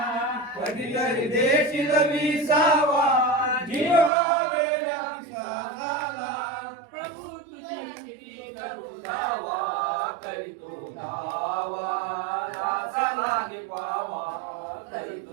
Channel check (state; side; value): drops out; left; at 4.1 s